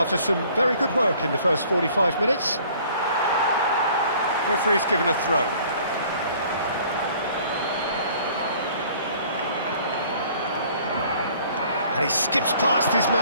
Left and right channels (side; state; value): both; inverted; correlation -0.55